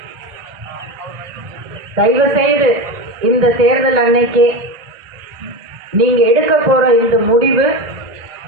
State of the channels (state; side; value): late; left; 1.8 ms